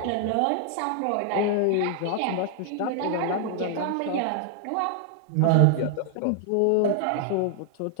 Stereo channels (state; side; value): different; both; correlation 0.00